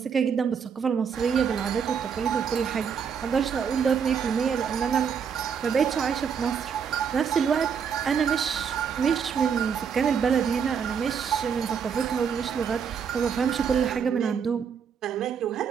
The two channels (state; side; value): quieter; left; 7.0 dB